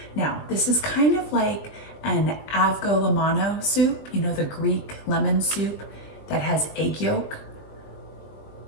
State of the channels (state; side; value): late; right; 20 ms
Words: Now, this is kind of like an avgolemono soup, you know, the Greek lemon soup that has egg yolk